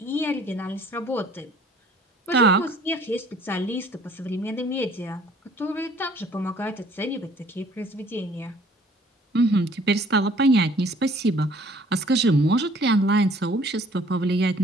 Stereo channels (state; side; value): normal; both; correlation 0.56